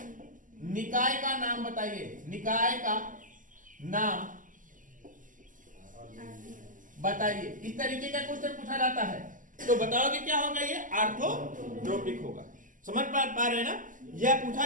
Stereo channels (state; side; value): late; left; 0.38 ms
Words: निकाय का नाम बताइए, निकाय का नाम बताइए। इस तरीके का क्वेश्चन पूछा जाता है, तो बताओगे क्या होगा? ये आर्थोरोम्बिक होगा। समझ पा रहे हैं ना? यह पूछा